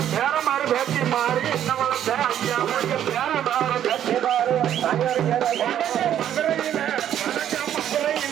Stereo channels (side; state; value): left; quieter; 10.5 dB